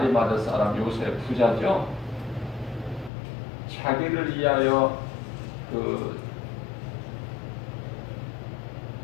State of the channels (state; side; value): drops out; right; at 3.1 s